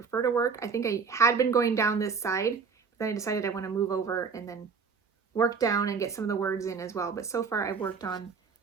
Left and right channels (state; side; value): quieter; left; 5.6 dB